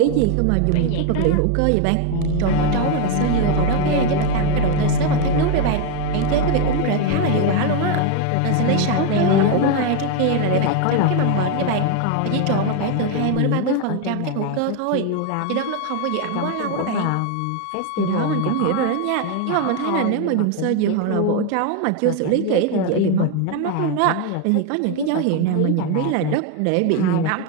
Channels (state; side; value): different; both; correlation 0.01